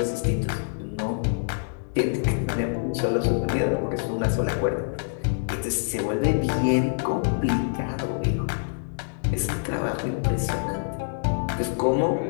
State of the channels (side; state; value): right; silent; digital silence